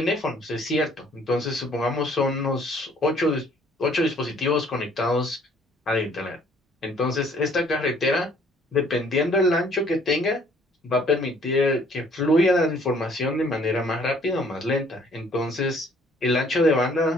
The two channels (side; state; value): both; normal; correlation 0.60